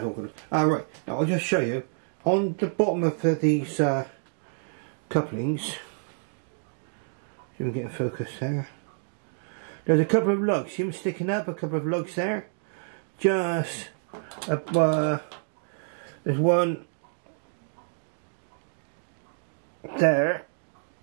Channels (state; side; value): silent; left; digital silence